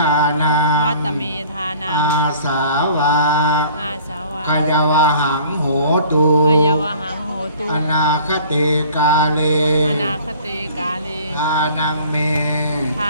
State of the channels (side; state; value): both; inverted; correlation -0.50